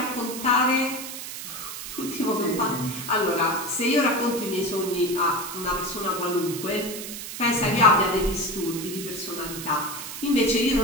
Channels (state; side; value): noise; right; hiss, 8 dB below the sound